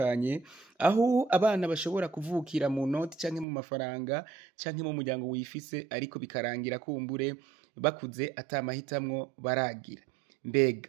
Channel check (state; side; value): drops out; left; at 3.5 s